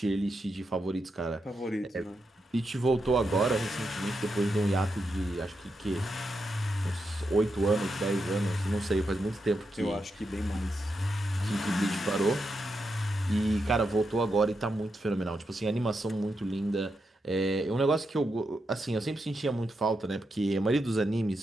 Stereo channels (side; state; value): both; normal; correlation 0.85